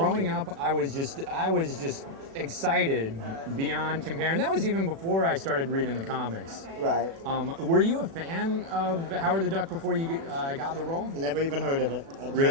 up, I was just excited beyond compare, and that was even before I started reading the comics. Right. Were you a fan of Howard the Duck before you got the role? Never even heard of it. I'd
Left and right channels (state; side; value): late; left; 36 ms